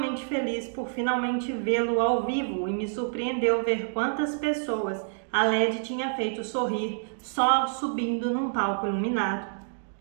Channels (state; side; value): silent; left; digital silence